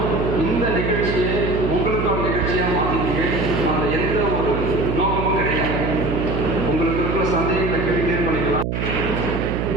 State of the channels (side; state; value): right; noise; hum, 1 dB below the sound